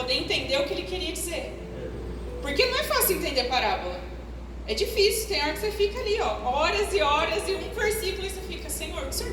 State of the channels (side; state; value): both; identical; correlation 1.00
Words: entender o que ele queria dizer. Porque não é fácil entender parábola, é difícil. Tem hora que você fica ali, horas e horas, e um versículo, e você fica: Senhor, o que o Senhor